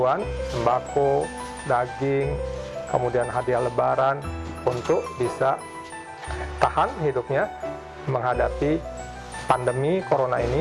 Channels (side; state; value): both; identical; correlation 1.00